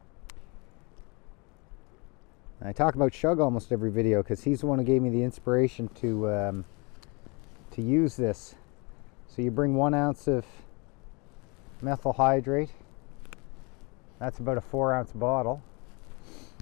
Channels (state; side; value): quieter; right; 29.8 dB